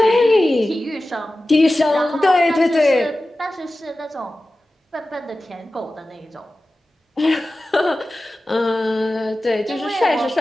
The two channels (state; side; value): normal; both; correlation 0.95